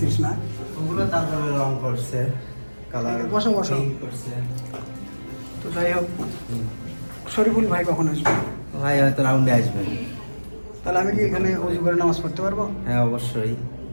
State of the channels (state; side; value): inverted; both; correlation -1.00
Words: না? ওগুলো তারপরে রং করছে, কালার বসো বসো। করছে। তো যাই হোক, শরীফুল ভাই কখন আসবে? ভাই হয়তো রাউন্ডে আসবেন। তাহলে আমি কি এখানে অজু করে নামাজ পড়তে পারবো? হ্যাঁ অবশ্যই।